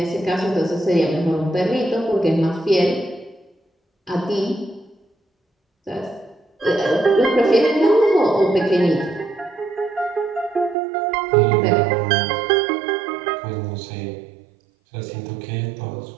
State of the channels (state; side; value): drops out; left; at 10.8 s